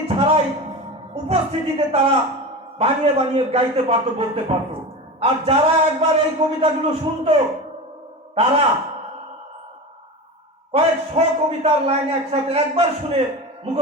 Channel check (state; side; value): normal; both; correlation 0.27